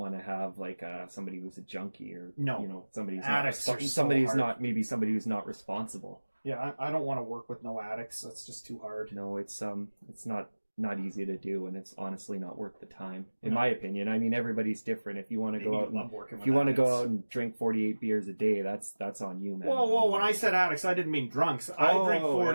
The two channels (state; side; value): inverted; both; correlation -1.00